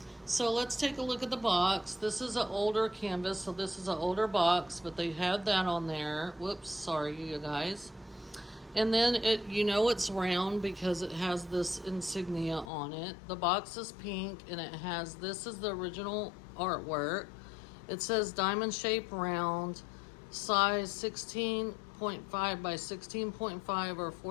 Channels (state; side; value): drops out; right; at 12.7 s